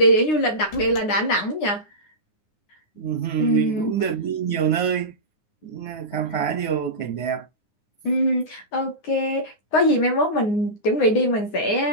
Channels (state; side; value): late; right; 9.7 ms